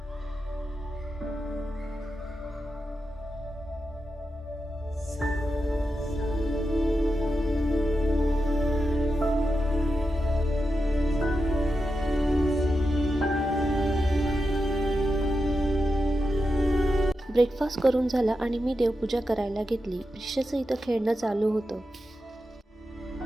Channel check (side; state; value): both; normal; correlation 0.89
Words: ब्रेकफास्ट करून झाला आणि मी देवपूजा करायला घेतली. प्रिशाचं इथं खेळणं चालू होतं.